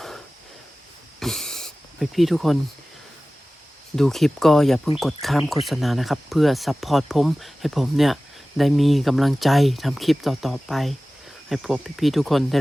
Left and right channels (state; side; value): normal; both; correlation 0.97